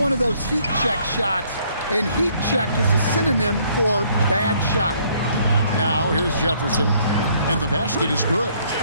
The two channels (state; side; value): inverted; both; correlation -0.65